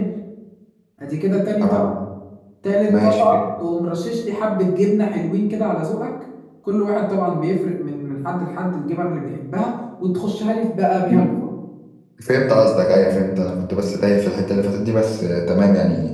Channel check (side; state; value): both; identical; correlation 1.00